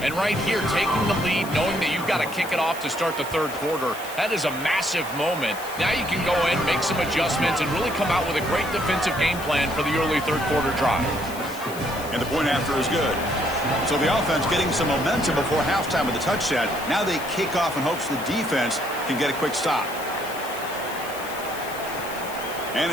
And right here, taking the lead, knowing that you've got to kick it off to start the 3rd quarter, that is a massive moment. Now you can go in, make some adjustments, and really come out with a great defensive game plan for the early 3rd quarter drive. And the point after is good. So the offense getting some momentum before halftime with the touchdown. Now they kick off in hopes the defense can get a quick stop.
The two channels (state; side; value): noise; left; hiss, 14 dB below the sound